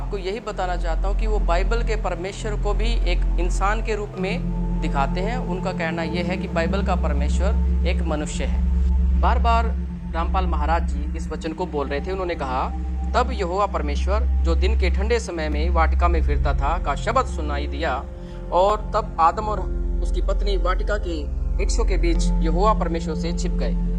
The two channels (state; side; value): identical; both; correlation 1.00